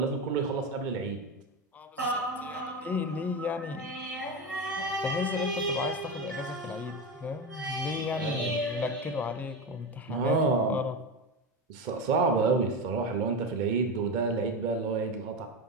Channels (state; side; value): normal; both; correlation 0.18